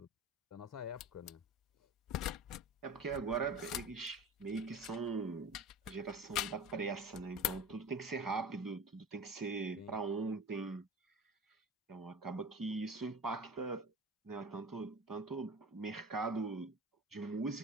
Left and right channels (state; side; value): normal; both; correlation 0.34